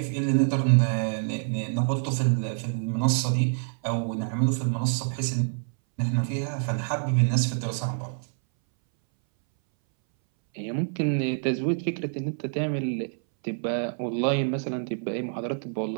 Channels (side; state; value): left; silent; 60 dB below the other